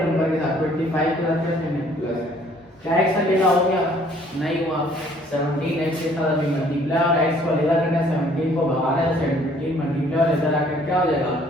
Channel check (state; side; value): normal; both; correlation 0.59